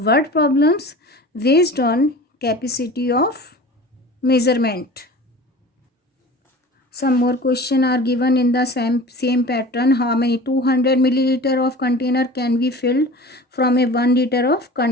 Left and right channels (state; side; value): normal; both; correlation 0.39